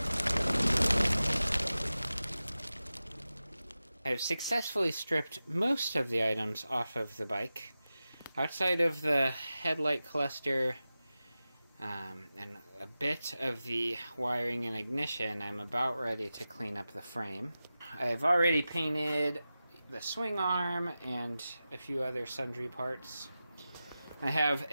I've successfully stripped most of the items off of the bike. Outside of the headlight cluster and a bit of the wiring and ignition, I'm about ready to clean up the frame. I've already painted the swing arm and a few other sundry parts. I have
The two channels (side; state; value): both; inverted; correlation -0.94